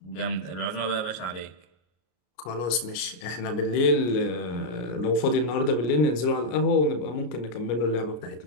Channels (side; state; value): right; late; 33 ms